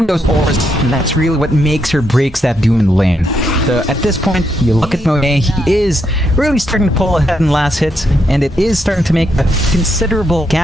those auras, and that's really what makes or breaks that Doom in the lane. So at this point, you look at Monet, he is really starting to pull ahead in last hits, and it is starting to make a considerable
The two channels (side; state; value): both; normal; correlation 0.79